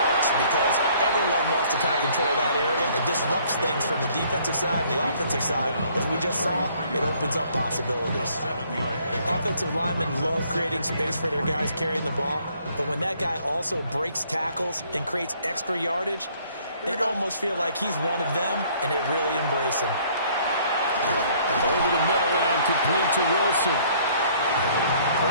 because everyone wants to kind of control that area. It disrupts things from the defensive side and the offensive side. As we just saw, it opens up possibilities. Offensive linemen love creating space for their guys carrying the ball, but when that guy also breaks tackles and creates extra yardage, they almost feel like he's one of them, and they really embrace him. Over the middle and complete to Wilson.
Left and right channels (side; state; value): both; inverted; correlation -0.61